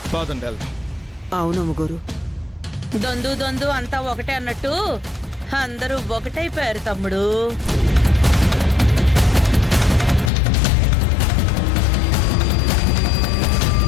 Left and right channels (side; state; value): right; drops out; at 10.3 s